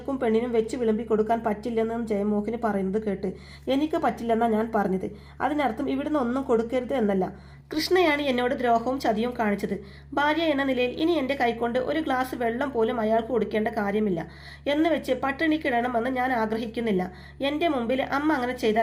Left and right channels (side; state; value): both; identical; correlation 1.00